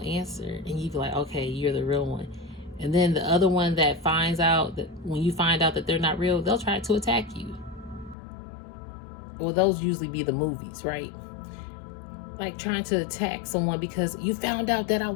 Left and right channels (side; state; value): right; drops out; at 8.2 s